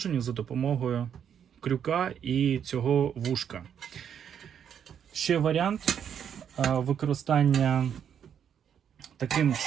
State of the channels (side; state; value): left; quieter; 8.5 dB